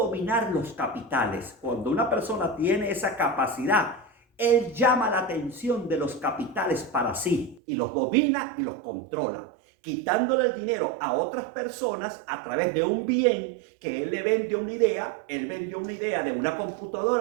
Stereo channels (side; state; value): left; drops out; at 7.6 s